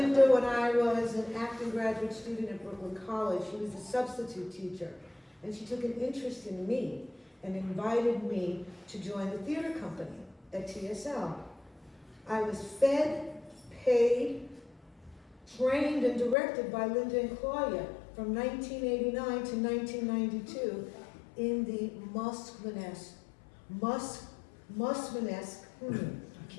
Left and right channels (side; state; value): right; drops out; at 16.4 s